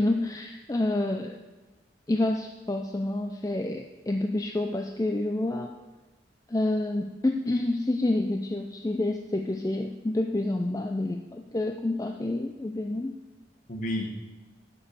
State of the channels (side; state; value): both; normal; correlation 0.88